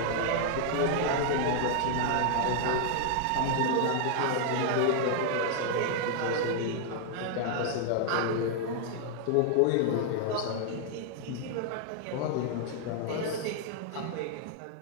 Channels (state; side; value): different; both; correlation 0.00